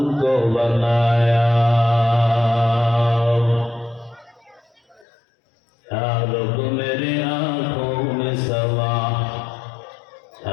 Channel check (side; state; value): right; drops out; at 5.1 s